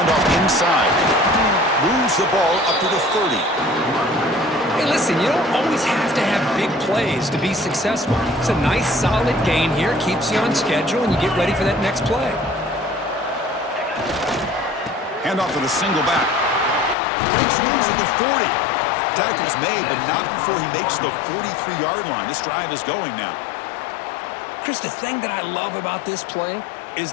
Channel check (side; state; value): right; drops out; at 16.9 s